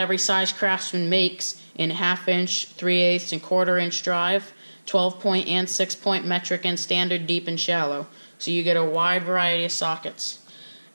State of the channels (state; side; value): inverted; both; correlation -1.00